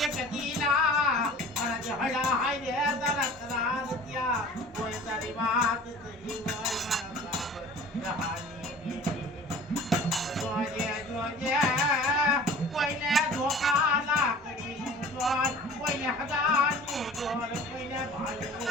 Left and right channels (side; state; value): both; normal; correlation 0.44